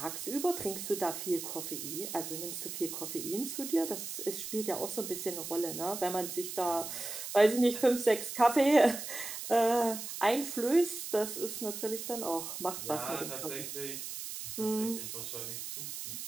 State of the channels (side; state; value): right; noise; hiss, 7 dB below the sound